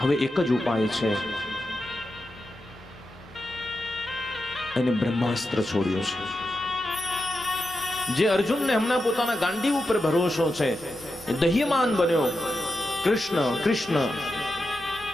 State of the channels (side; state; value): both; normal; correlation 0.89